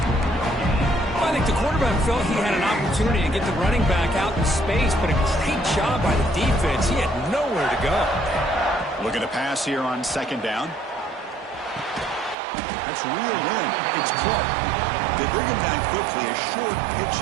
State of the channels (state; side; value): drops out; left; at 12.4 s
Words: I think the quarterback felt he had an opportunity to get the running back out in space, but a great job by the defense. He had nowhere to go. Looking to pass here on second down. That's reeled in. It's Clark. They bring him down quickly. A short pitch